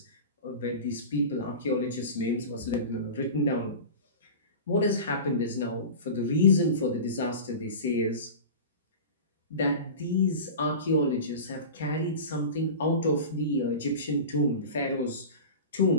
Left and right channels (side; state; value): both; inverted; correlation -0.32